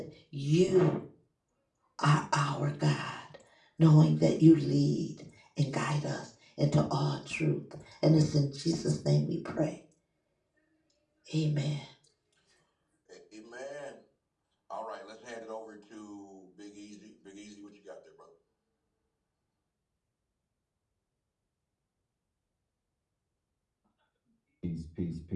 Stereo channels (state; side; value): identical; both; correlation 1.00